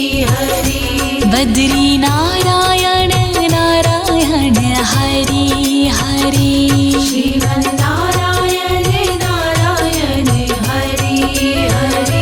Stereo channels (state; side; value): identical; both; correlation 1.00